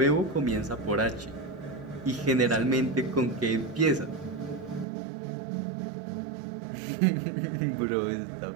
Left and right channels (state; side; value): drops out; left; at 4.9 s